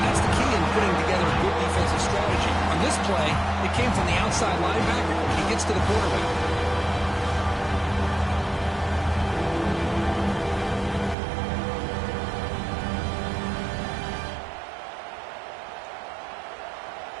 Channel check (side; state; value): left; drops out; at 11.2 s